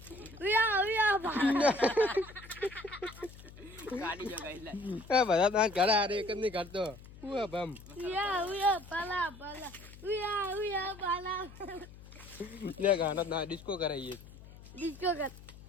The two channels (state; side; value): noise; left; hum, 18 dB below the sound